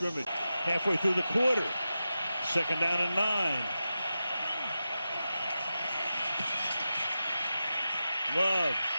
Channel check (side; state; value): both; inverted; correlation -0.92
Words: Halfway through the quarter. 2nd down and 9. Love.